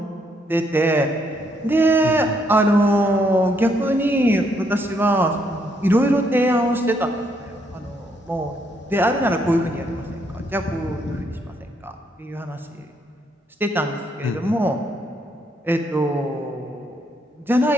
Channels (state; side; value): normal; both; correlation 0.73